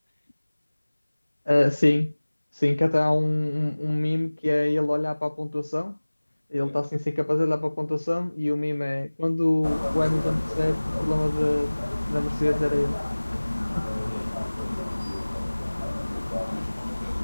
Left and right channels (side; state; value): both; inverted; correlation -1.00